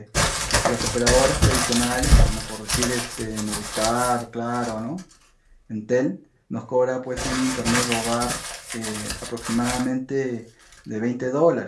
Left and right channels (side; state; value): both; identical; correlation 1.00